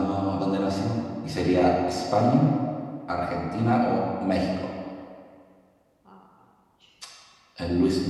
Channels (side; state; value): both; identical; correlation 1.00